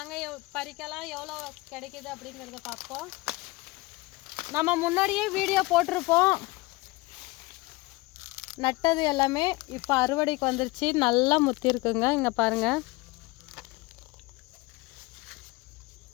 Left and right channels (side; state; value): right; quieter; 22.6 dB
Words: பறிக்கலாம், எவ்வளோ கிடைக்குது அப்படிங்கிறத பார்ப்போம். நம்ம முன்னாடியே வீடியோ போட்டிருப்போம், நட்டது எல்லாமே. இப்போ அறுவடைக்கு வந்துருச்சு, நல்லா முத்தி இருக்குங்க. இங்கே பாருங்கள்.